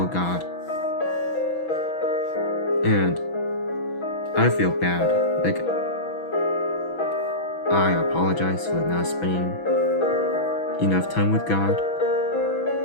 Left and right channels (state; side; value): late; right; 6.1 ms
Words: God. And I feel bad. I apologize for not spending enough time with God,